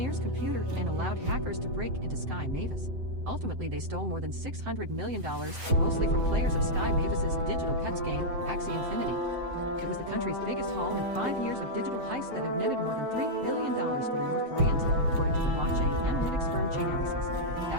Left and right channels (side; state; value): left; late; 7.8 ms